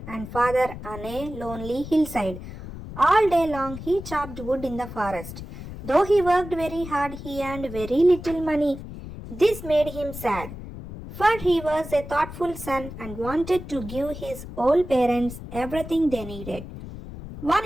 and father on a lonely hillside. All day long, he chopped wood in the forest. Though he worked very hard, he earned very little money. This made him sad, for he was a thoughtful son and wanted to give his old parents everything they needed. One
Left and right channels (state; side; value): noise; left; rumble, 11 dB below the sound